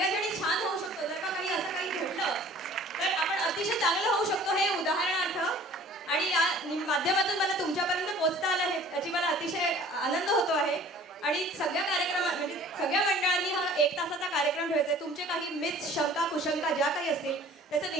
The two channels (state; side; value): normal; both; correlation 0.49